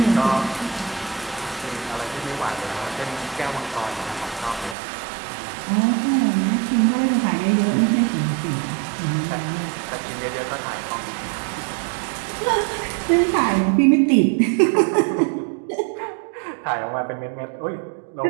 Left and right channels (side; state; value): left; drops out; at 4.8 s